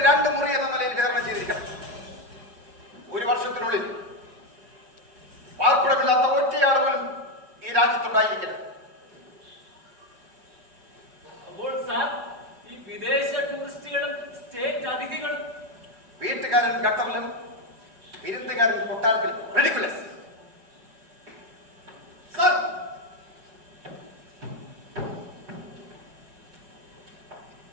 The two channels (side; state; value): left; late; 5.5 ms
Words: 2 മുറി എന്ന നിലയിൽ വിതരണം ചെയ്തിരിക്കണം. 1 വർഷത്തിനുള്ളിൽ പാർപ്പിടമില്ലാത്ത ഒറ്റയാൾ പോലും ഈ രാജ്യത്തുണ്ടായിരിക്കില്ല. അപ്പോൾ സാർ, ഈ വിദേശ ടൂറിസ്റ്റുകളും സ്റ്റേറ്റ് അതിഥികളും വീട്ടുകാരൻ ഗട്ടറിലും വിരുന്നുകാരൻ കൊട്ടാരത്തിലും ridiculous. Sir,